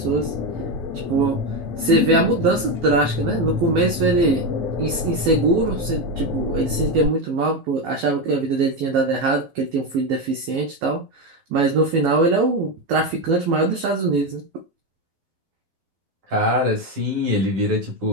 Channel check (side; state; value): left; late; 12 ms